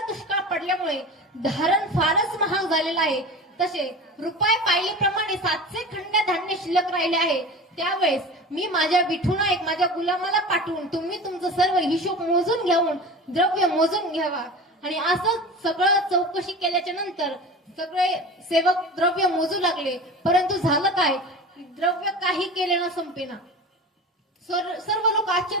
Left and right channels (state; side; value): normal; both; correlation 0.33